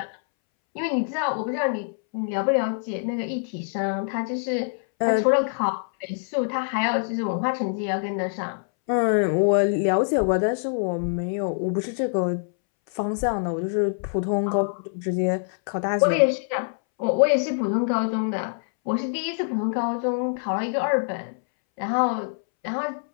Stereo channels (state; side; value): silent; right; 62 dB below the other